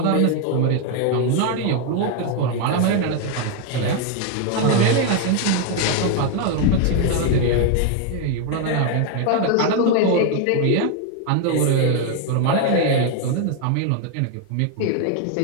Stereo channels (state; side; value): different; both; correlation 0.01